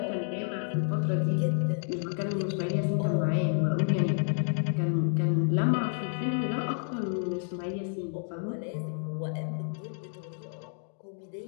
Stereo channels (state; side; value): silent; right; 58 dB below the other